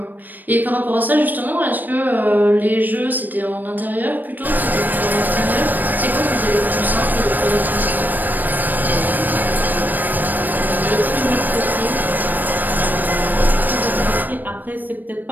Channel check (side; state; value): left; late; 0.089 ms